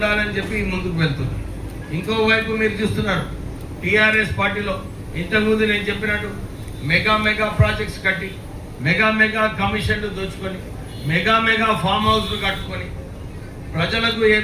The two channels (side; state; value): both; identical; correlation 1.00